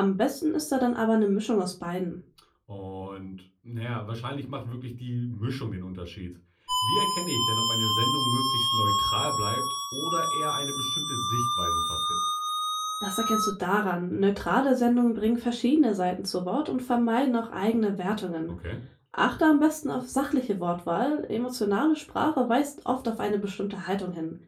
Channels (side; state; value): both; identical; correlation 1.00